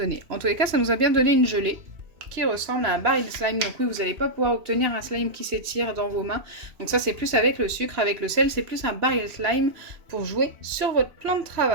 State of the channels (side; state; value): left; late; 2.9 ms